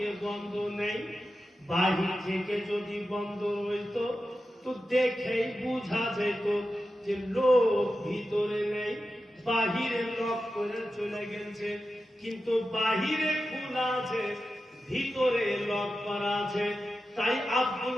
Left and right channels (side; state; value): both; normal; correlation 0.92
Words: বন্ধ নেই। বাহির থেকে যদি বন্ধ হইতো তো দেখেই বুঝা যেত যে লোক ভিতরে নেই, বাহিরে লক করে চলে গেছে। কিন্তু বাহিরে খোলা আছে, ভিতরে লক করা আছে। তাই আব্দুল